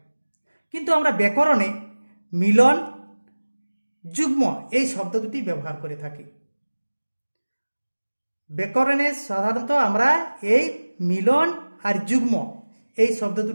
কিন্তু আমরা ব্যাকরণে মিলন, যুগ্ম এই শব্দ দুটি ব্যবহার করে থাকি। ব্যাকরণে সাধারণত আমরা এই মিলন আর যুগ্ম এই শব্দ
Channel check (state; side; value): inverted; both; correlation -1.00